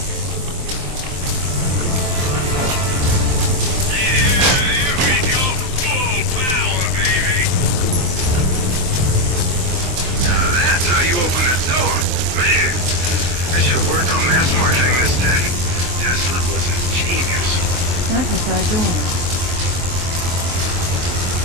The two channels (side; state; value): left; late; 23 ms